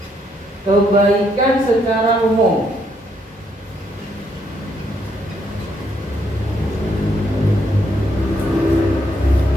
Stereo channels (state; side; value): normal; both; correlation 0.74